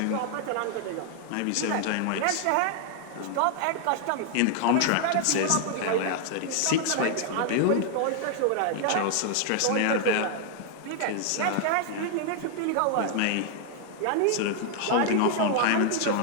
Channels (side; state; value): both; different; correlation 0.00